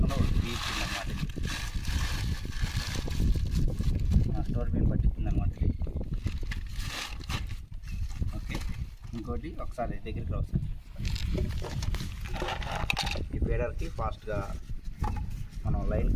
తీర్చింది అనమాట. స్టోర్ బియ్యం పట్టించింది అనమాట. ఓకే, ఇంకోటి ఒకసారి దగ్గరికి రావచ్చు. ఈ ఫీడర్కి ఫాస్ట్గా మనం లైన్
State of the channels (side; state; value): both; identical; correlation 1.00